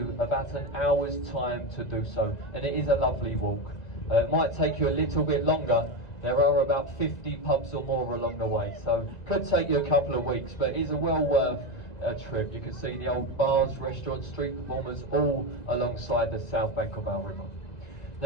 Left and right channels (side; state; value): right; late; 2.0 ms